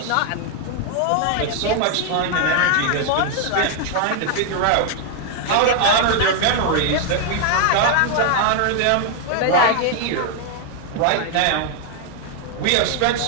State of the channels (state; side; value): different; both; correlation 0.00